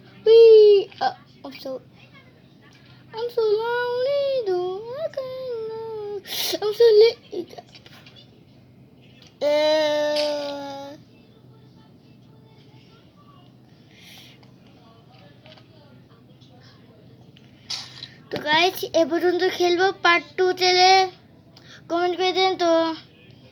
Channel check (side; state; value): both; identical; correlation 1.00